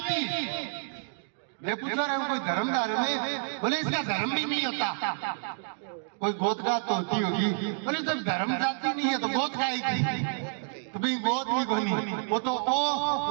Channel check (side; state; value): left; silent; digital silence